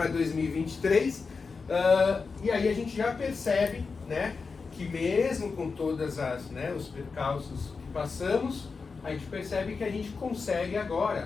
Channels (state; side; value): quieter; right; 4.7 dB